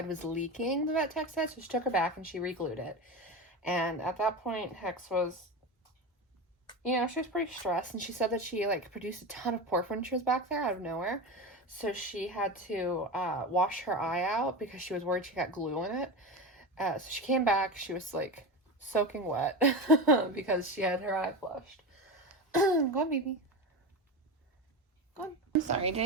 was leaking, the vet tech said, so she took her back and she re-glued it. And at that point, Hex was, she was pretty stressed, and she said that she like produced a ton of pork when she was back there out of nowhere. So she had to wash her eye out because she was worried she got glue in it. So she came back, she was like soaking wet because she had her eye flushed. Go on, baby. Go on. I'm sorry, did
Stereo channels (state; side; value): normal; both; correlation 0.23